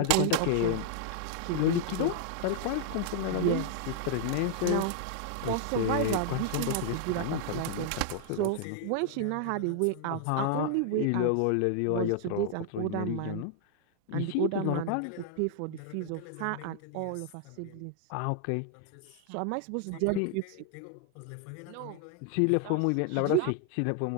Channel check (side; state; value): both; different; correlation 0.00